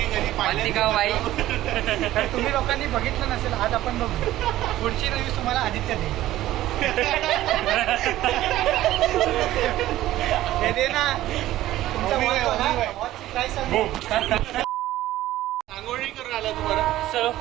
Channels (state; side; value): quieter; left; 14.8 dB